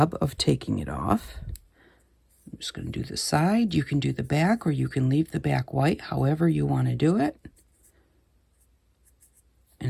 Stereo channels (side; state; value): both; identical; correlation 1.00